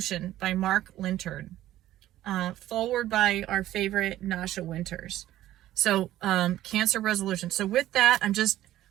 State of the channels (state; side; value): quieter; left; 14.0 dB